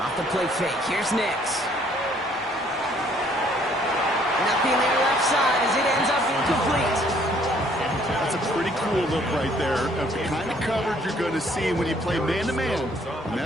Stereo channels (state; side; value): normal; both; correlation 0.62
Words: the play fake. Here's Nix. Nothing there left side as it ends up incomplete. That's a pretty cool look right there of the kind of coverage you're going to see when you play man-to-man. And